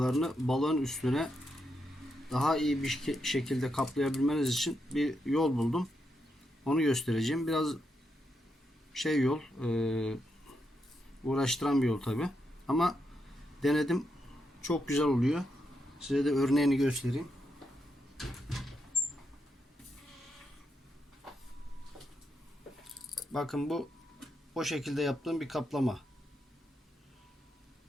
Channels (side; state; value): both; normal; correlation 0.83